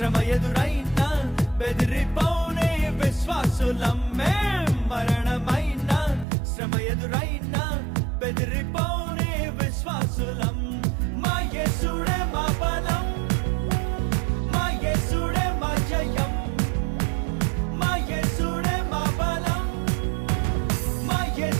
ఎదురైన బెదిరిపోనే విశ్వాసులం. మరణమైన శ్రమ ఎదురైన బెదిరిపోనే విశ్వాసులం. మా యేసుడే మా బలం, మా యేసుడే మా జయం, మా యేసుడే మా బలం, మా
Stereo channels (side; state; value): left; drops out; at 6.2 s